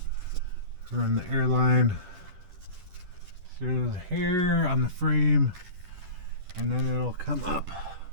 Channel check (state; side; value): late; left; 10 ms